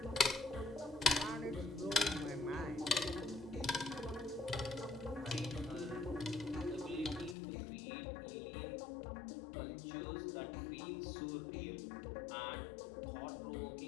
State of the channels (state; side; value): drops out; right; at 7.4 s